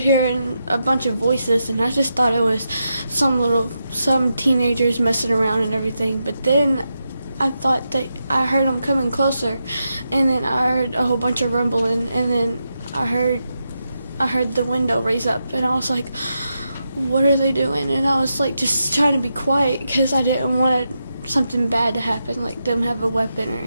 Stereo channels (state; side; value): inverted; both; correlation -0.86